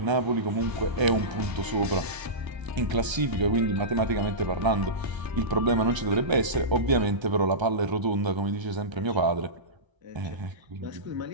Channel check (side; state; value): left; late; 1.3 ms